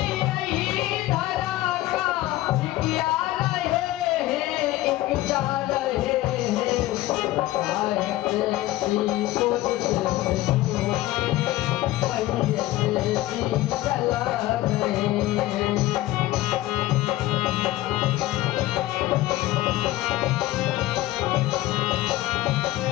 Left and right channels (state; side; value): quieter; right; 16.5 dB